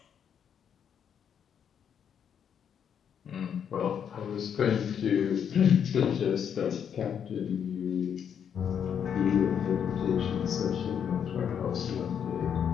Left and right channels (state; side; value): quieter; right; 8.2 dB